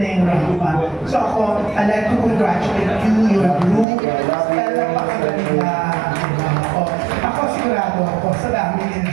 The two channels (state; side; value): drops out; left; at 3.9 s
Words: yung rampa. So ako, I'd like to congratulate you, your group. Napakagaling na. Ako sigurado ako, sa dami